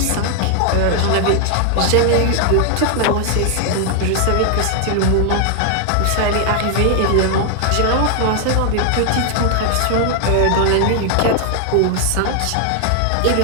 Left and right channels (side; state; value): both; different; correlation 0.00